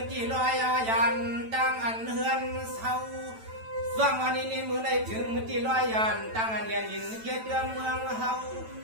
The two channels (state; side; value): late; left; 9.0 ms